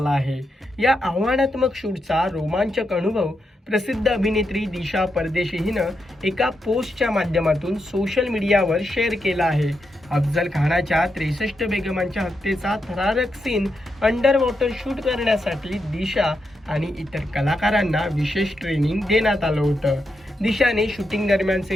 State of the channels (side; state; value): both; normal; correlation 0.84